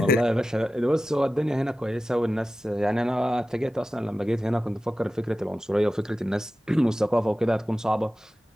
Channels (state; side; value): normal; both; correlation 0.94